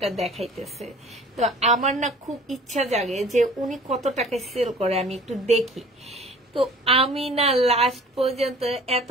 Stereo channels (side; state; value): both; normal; correlation 0.48